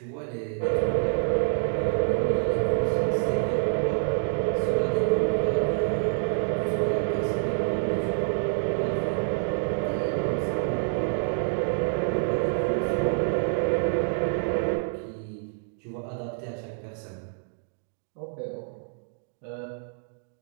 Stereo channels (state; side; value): silent; left; 60 dB below the other